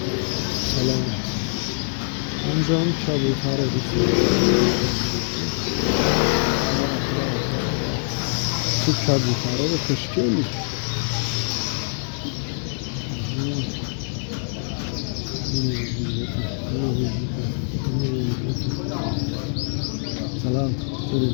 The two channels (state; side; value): silent; right; 63 dB below the other